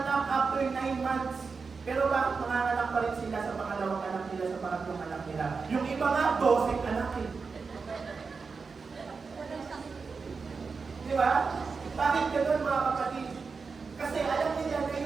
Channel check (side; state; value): left; quieter; 4.9 dB